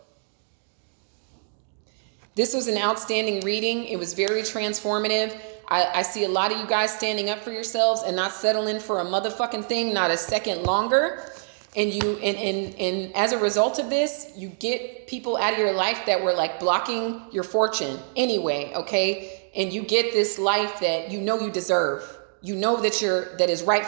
This was an outstanding reading. It was very transformative. I see a lot of you guys standing up for yourselves and not settling for a motherfucking thing, not a second longer. And as a result of this, you get people out of your life that were blocking your fortune anyway, okay? And you get this life that you know you deserve. You know that is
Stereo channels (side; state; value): left; silent; digital silence